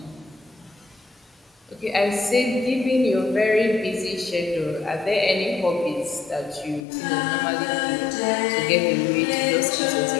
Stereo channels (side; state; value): right; drops out; at 6.9 s